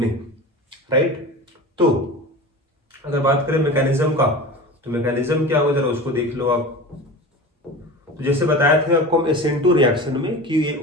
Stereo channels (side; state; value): both; normal; correlation 0.33